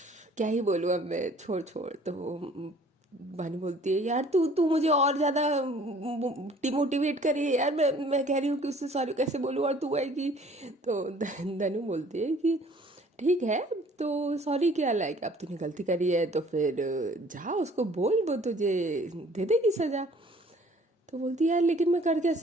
क्या ही बोलूँ अब मैं, छोड़ छोड़। तो वानी बोलती है यार तू तू मुझे और ज़्यादा डिमोटिवेट करिए यार, मैं कह रही हूँ कि उससे सॉरी कैसे बोलूँ और तू आएगी। तो धनु बोलती है कि ठीक है तो सॉरी क्या, लाइक अब तूने गलती करी है तो फिर जा उसको बोल, वो तुझे दे देगी सज़ा। तो बोलती है यार लेकिन मैं कर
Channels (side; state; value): both; normal; correlation 0.54